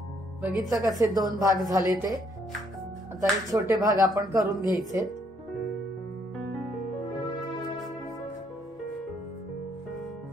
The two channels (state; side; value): normal; both; correlation 0.69